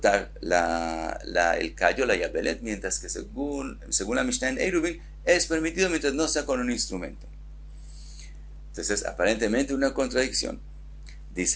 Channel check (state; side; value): identical; both; correlation 1.00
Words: el callo, la yabelet, mientras que según la Mishnah en Eiruvin, es permitido mientras no sea con un instrumento. Entonces, aparentemente una contradicción.